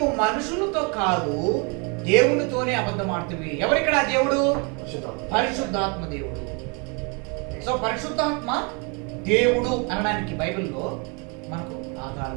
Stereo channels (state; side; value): quieter; left; 33.3 dB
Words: మనుషులతో కాదు దేవునితోనే అబద్ధం ఆడుతుంది. ఎవరిక్కడ దేవుడు? పరిశుద్ధాత్మ దేవుడు. సో పరిశుద్ధాత్మ దేవుడు అనడానికి బైబిల్లో మనకు